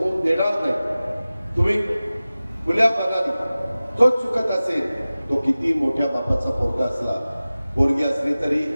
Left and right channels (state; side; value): inverted; both; correlation -0.97